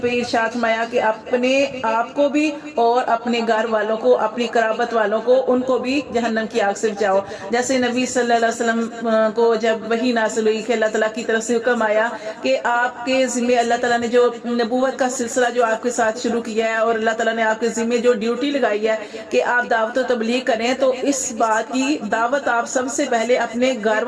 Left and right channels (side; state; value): both; identical; correlation 1.00